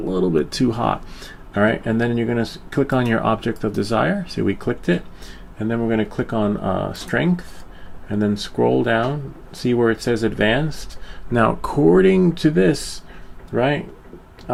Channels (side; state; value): both; identical; correlation 1.00